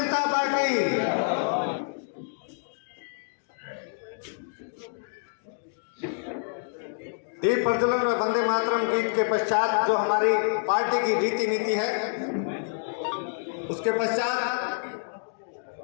party. दीप प्रज्वलन और वंदे मातरम गीत के पश्चात जो हमारी पार्टी की रीति नीति है, उसके पश्चात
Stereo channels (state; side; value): silent; right; digital silence